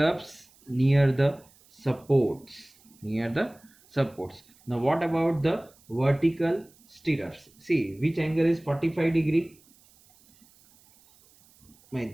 near the supports. Now what about the vertical stirrups? See, which angle is 45 degree?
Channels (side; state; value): right; noise; hiss, 29 dB below the sound